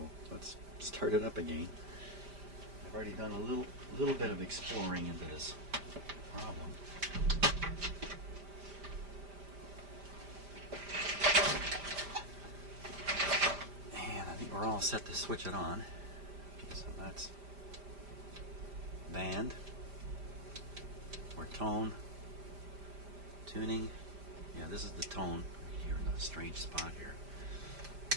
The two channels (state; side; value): late; left; 5.0 ms